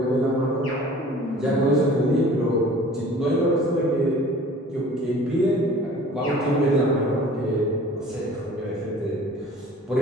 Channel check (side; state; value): both; normal; correlation 0.47